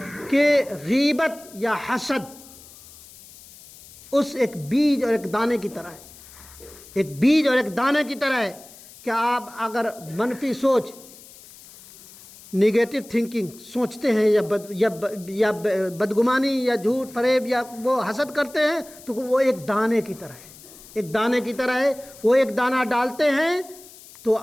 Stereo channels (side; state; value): left; noise; hiss, 20 dB below the sound